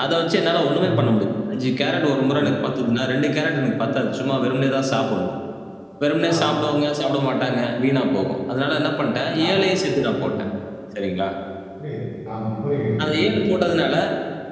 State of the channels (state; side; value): identical; both; correlation 1.00